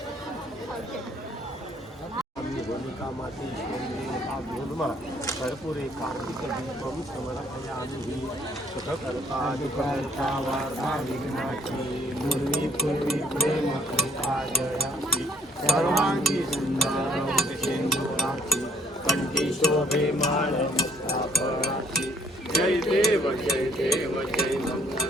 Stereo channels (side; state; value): both; normal; correlation 0.64